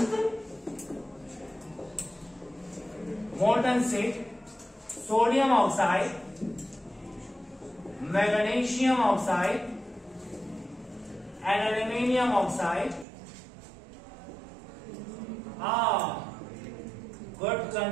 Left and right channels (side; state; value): left; drops out; at 13.1 s